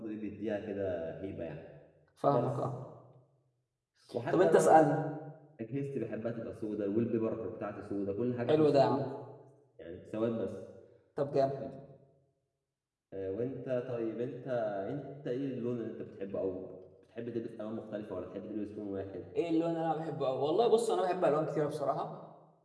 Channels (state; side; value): identical; both; correlation 1.00